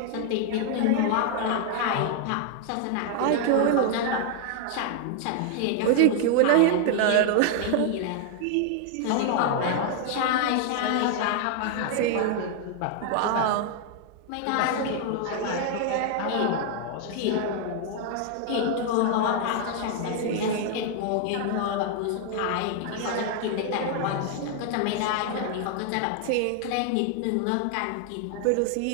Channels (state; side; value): different; both; correlation 0.00